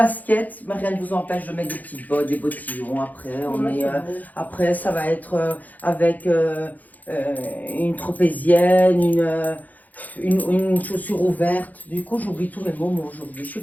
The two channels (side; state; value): right; late; 0.081 ms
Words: mais rien ne vous empêche de mettre des petites bottes, des bottillons. Après, ça va être avec une tropézienne, une chaussure ouverte. Du coup, j'oublie tous mes mots aujourd'hui. Je suis